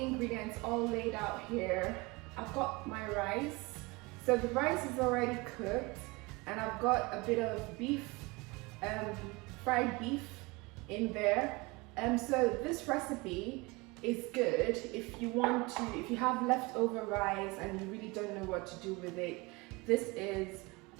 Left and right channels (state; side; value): quieter; left; 25.1 dB